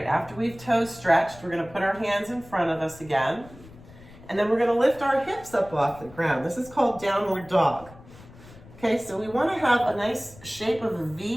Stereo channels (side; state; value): left; noise; rumble, 20 dB below the sound